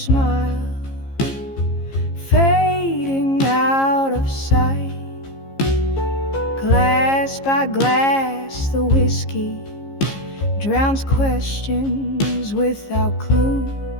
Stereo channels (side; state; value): right; late; 15 ms